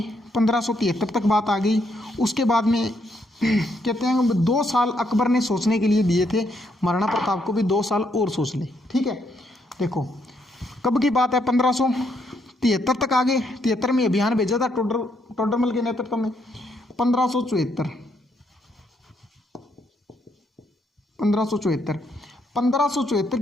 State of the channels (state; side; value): normal; both; correlation 0.75